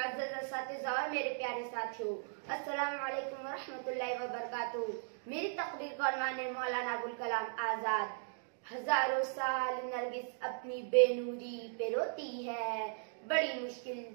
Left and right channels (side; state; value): left; silent; digital silence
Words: असातिज़ा और मेरे प्यारे साथियों, अस्सलामु अलैकुम व रहमतुल्लाहि व बरकातुहू। मेरी तकरीर का उन्वान है मौलाना अबुल कलाम आज़ाद। हजारों साल नरगिस अपनी बेनूरी पे रोती है, बड़ी मुश्किल